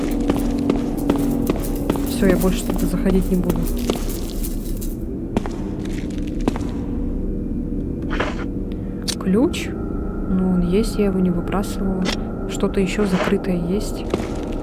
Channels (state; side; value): identical; both; correlation 1.00